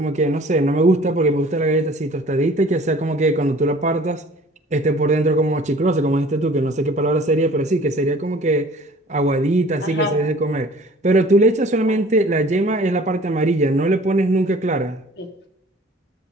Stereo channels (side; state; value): both; normal; correlation 0.50